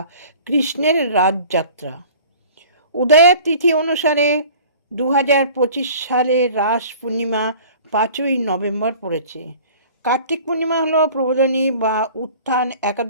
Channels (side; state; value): both; inverted; correlation -0.46